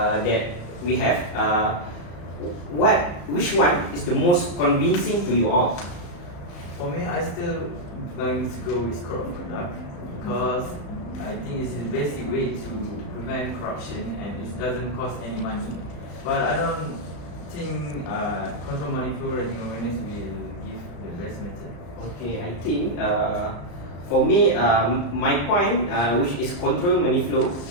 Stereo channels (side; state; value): right; late; 35 ms